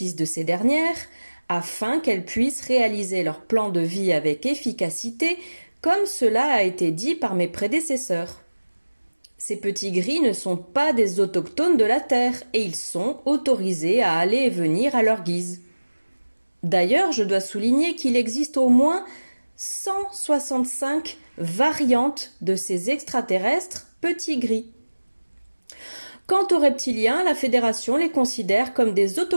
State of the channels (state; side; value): inverted; both; correlation -1.00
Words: de ces dernières, afin qu'elles puissent réaliser leur plan de vie avec efficacité, comme cela a été dit par mes prédécesseurs. Ces petits gris ne sont pas des autochtones de la Terre et ils sont autorisés à aller et venir à leur guise. D'ailleurs, je dois souligner qu'il existe au moins 165 variantes de ces extraterrestres petits gris. Quant aux reptiliens, la Fédération les considère comme des